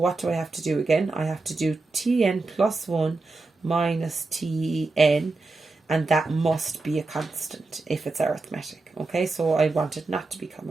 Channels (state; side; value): quieter; left; 3.5 dB